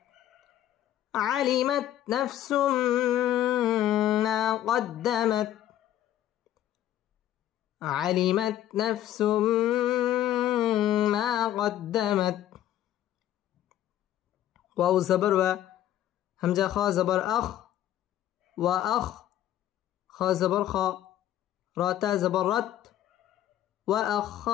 علمت نفس ما قدمت علمت نفس ما قدمت واو زبر و همزة خا زبر أخ وأخ خا زبر خا راتا زبر رت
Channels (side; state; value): right; quieter; 12.2 dB